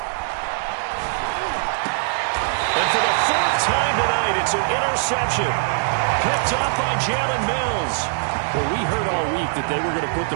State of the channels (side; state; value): left; silent; digital silence